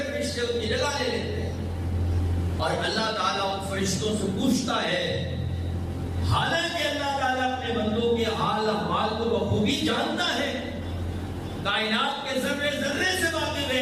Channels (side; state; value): both; identical; correlation 1.00